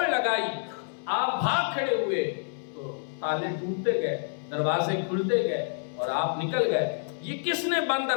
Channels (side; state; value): right; silent; digital silence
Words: لگائی، آپ بھاگ کھڑے ہوئے تو تالے ٹوٹتے گئے، دروازے کھلتے گئے، اور آپ نکل گئے۔ یہ کس نے بند